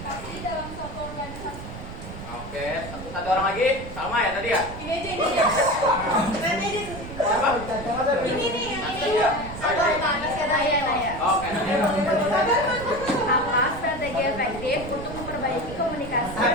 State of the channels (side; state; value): right; noise; rumble, 11 dB below the sound